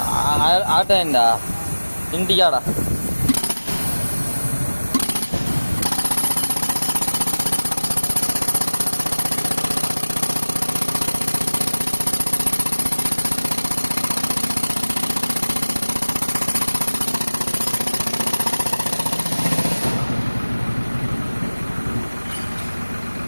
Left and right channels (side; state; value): both; inverted; correlation -1.00